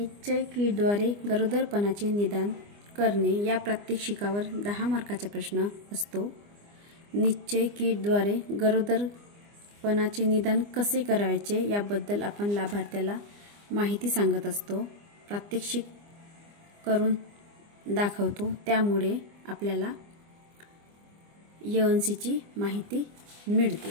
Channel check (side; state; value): left; late; 25 ms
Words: किटद्वारे गरोदरपणाचे निदान करणे या प्रात्यक्षिकावर 10 मार्काचा प्रश्न असतो। निश्चय किटद्वारे गरोदरपणाचे निदान कसे करायचे याबद्दल आपण लाभार्थ्याला माहिती सांगत असतो, प्रात्यक्षिक करून दाखवतो। त्यामुळे आपल्याला EONCची माहिती मिळते।